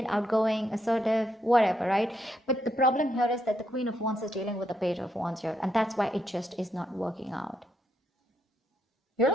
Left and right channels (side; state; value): both; normal; correlation 0.78